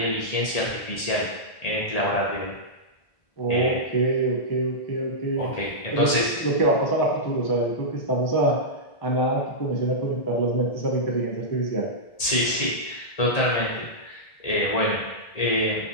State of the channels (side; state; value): right; late; 1.8 ms